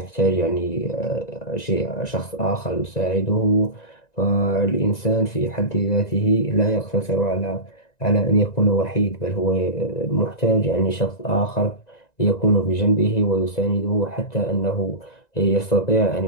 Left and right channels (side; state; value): right; late; 1.9 ms